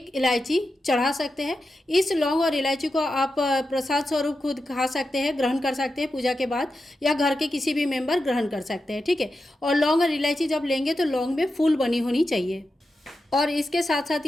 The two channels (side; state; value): both; normal; correlation 0.90